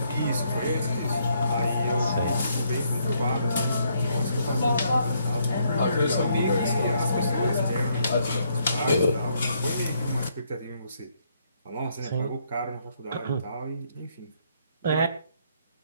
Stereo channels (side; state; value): both; inverted; correlation -0.72